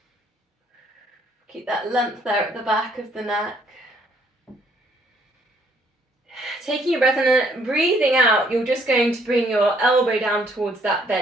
keep that length there at the back of the neck. Taking a breath and then breathing out, you're just going to bring your elbow down towards that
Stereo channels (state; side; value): normal; both; correlation 0.65